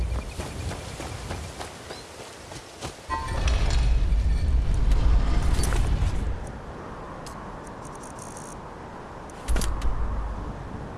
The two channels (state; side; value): identical; both; correlation 1.00